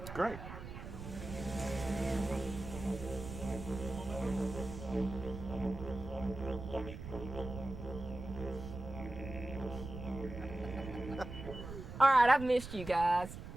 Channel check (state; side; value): noise; right; rumble, 10 dB below the sound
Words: Great. All right, I've missed you guys.